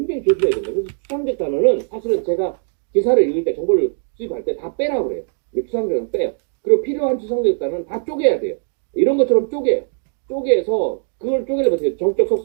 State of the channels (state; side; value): silent; left; 57 dB below the other